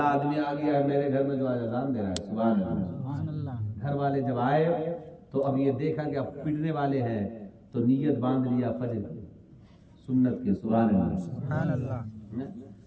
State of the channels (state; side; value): identical; both; correlation 1.00